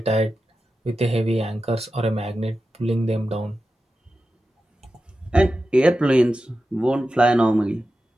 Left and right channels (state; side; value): normal; both; correlation 0.92